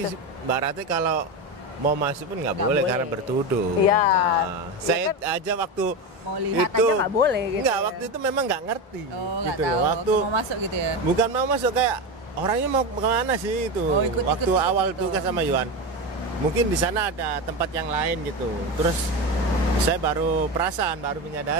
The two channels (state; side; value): normal; both; correlation 0.18